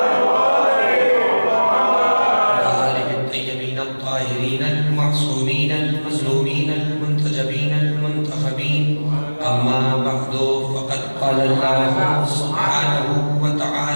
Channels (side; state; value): both; inverted; correlation -1.00